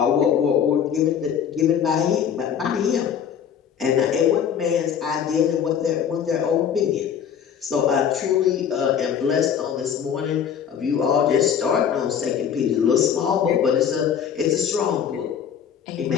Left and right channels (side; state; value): right; quieter; 8.2 dB